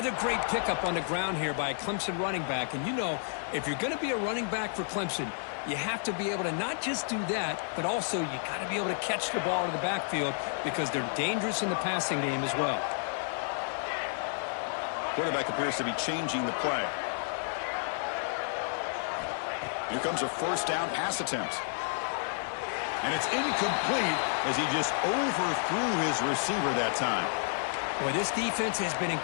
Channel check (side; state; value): right; silent; digital silence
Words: great pickup on the ground here by a Clemson running back. And you know, if you're going to be a running back for Clemson, you have to be able to not just do that, but also you got to be able to catch the ball in the backfield because they're dangerous in the passing game as well. Quarterback appears to be changing the play. Here comes a 1st down pass attempt. And it's incomplete as he just overthrew his receiver that time. Boy, this defense has been